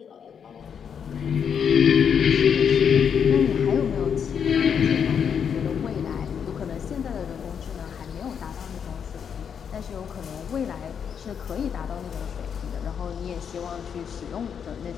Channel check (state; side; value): quieter; right; 7.5 dB